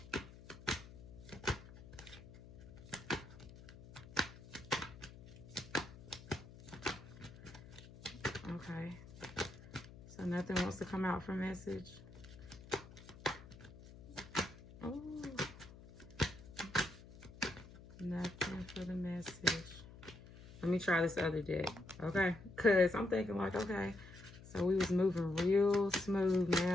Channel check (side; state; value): left; noise; hum, 17 dB below the sound